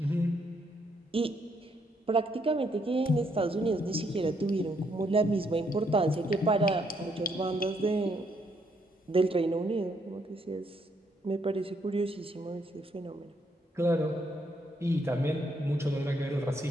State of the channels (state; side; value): normal; both; correlation 0.73